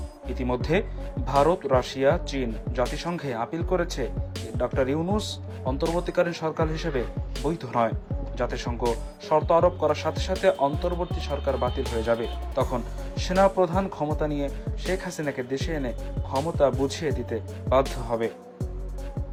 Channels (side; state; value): both; identical; correlation 1.00